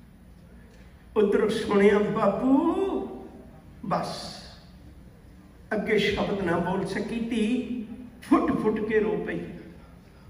उधर सुनिया बापू, बस अगे शब्द ना बोल सकी, धी फुट फुट के रो पई।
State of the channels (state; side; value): identical; both; correlation 1.00